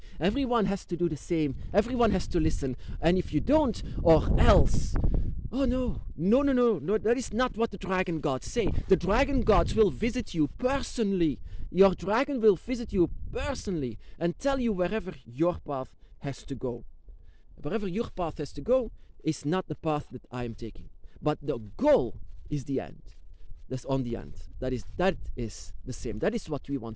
Everyone has to do the same. Everyone has to listen. And if you don't, or else... Oh no, that is not what the dragon gods say. The dragon gods will visit you personally. Your dragon will visit you personally and tell you wherever your path has to go. Wherever your path has to go is not the path that I am taking. But the goal is the end. That's on the end. That is the same. That is what we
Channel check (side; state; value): both; identical; correlation 1.00